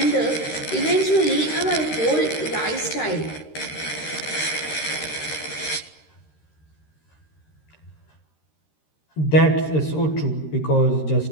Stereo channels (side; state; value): right; late; 13 ms